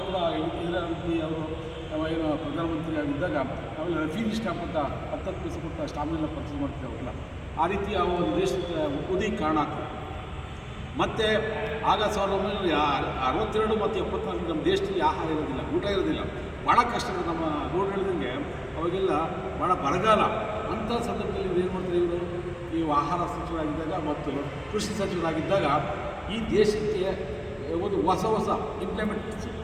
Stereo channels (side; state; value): both; identical; correlation 1.00